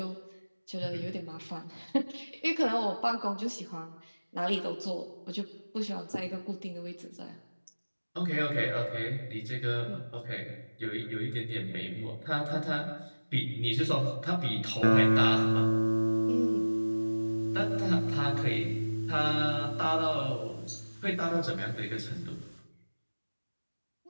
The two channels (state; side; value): inverted; both; correlation -1.00